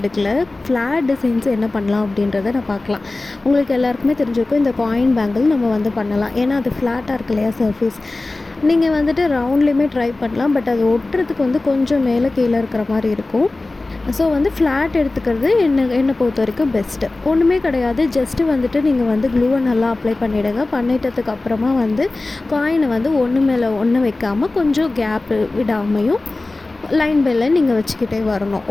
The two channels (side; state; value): right; quieter; 3.1 dB